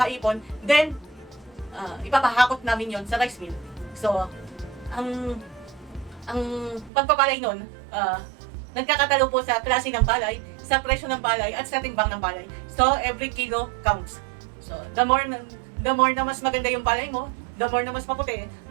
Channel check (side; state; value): left; drops out; at 6.9 s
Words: Then, ipapahakot namin yon sa rice mill. So, ang pagpapalay nun, nagkakatalo po sa klase ng palay, sa presyo ng palay, at sa timbang ng palay. So, every kilo counts. So, the more na mas maganda yung palay mo, the more na mas maputi,